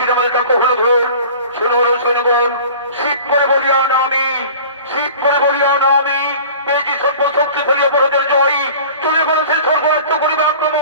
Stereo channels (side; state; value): both; inverted; correlation -0.42